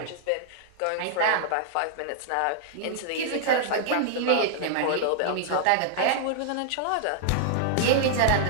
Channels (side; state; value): both; different; correlation -0.01